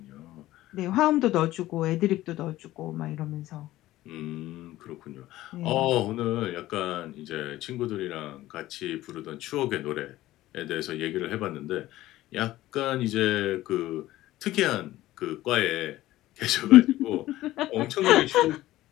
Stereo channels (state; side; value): quieter; right; 15.8 dB